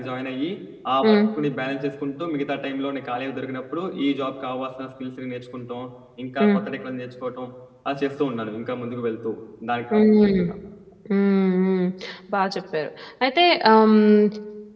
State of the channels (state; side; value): identical; both; correlation 1.00